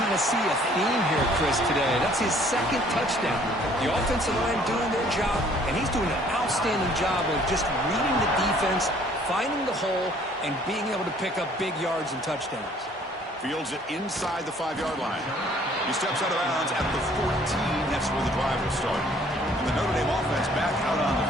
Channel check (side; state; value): both; normal; correlation 0.58